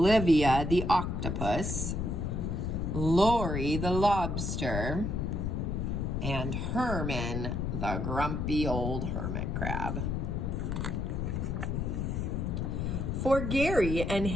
the octopus, Lori the lobster, and Herman the grumpy old hermit crab. For Gary and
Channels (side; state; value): left; noise; rumble, 1 dB below the sound